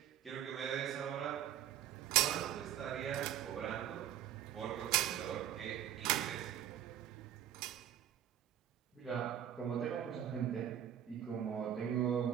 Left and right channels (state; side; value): quieter; left; 10.6 dB